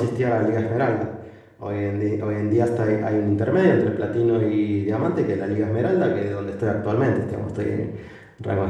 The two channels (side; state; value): both; identical; correlation 1.00